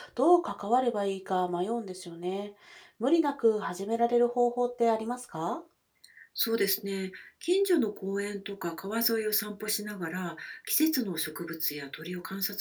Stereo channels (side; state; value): both; identical; correlation 1.00